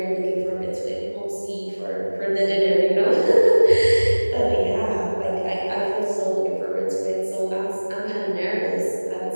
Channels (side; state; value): both; inverted; correlation -1.00